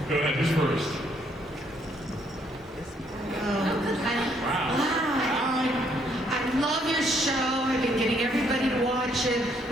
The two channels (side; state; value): both; normal; correlation 0.69